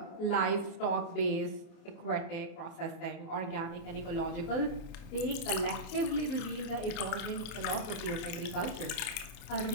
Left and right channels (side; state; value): right; late; 26 ms